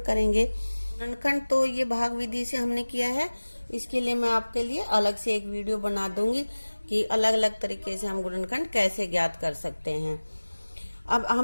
करेंगे। गुणनखंड तो ये भाग विधि से हमने किया है, इसके लिए मैं आपके लिए अलग से एक वीडियो बना दूंगी कि अलग अलग तरीके से हम गुणनखंड कैसे ज्ञात कर सकते हैं। अब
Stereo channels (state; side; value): inverted; both; correlation -1.00